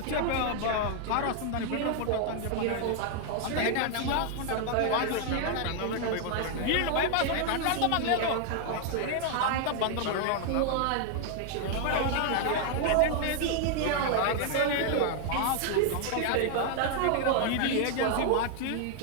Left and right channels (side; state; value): both; different; correlation 0.00